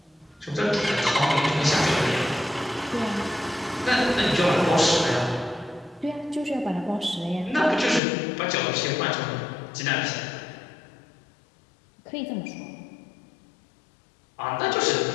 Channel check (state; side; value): drops out; right; at 8.0 s